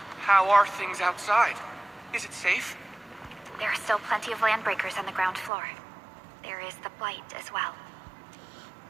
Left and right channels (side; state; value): left; drops out; at 5.5 s